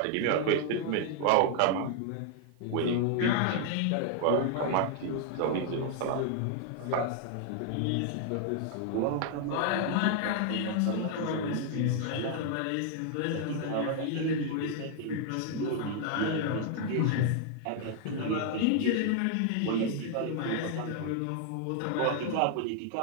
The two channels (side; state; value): both; different; correlation 0.00